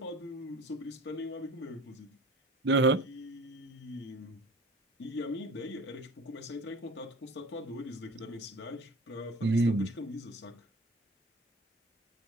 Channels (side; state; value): both; normal; correlation 0.40